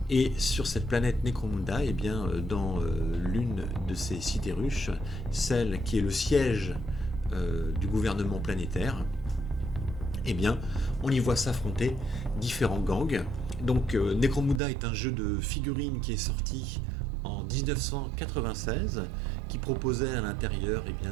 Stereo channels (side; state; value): left; drops out; at 14.6 s